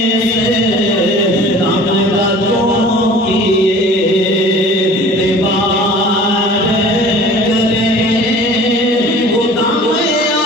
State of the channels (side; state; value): both; normal; correlation 0.45